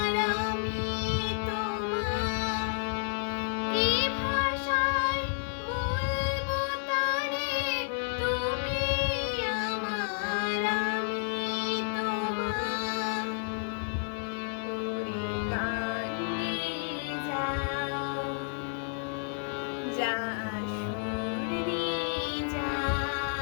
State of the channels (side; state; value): right; silent; digital silence